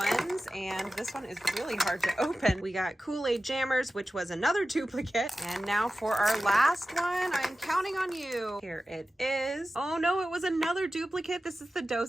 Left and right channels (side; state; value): both; normal; correlation 0.94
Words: and this one is really hard to open. We got Kool-Aid Jammers, which was another duplicate. And now for our last one, I'm counting on you. Here it is. Oh no, it was another duplicate. This is the